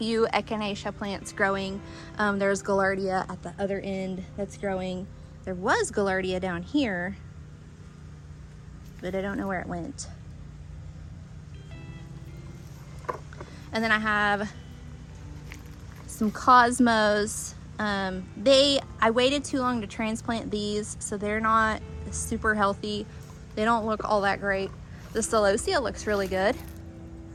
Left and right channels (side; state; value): both; identical; correlation 1.00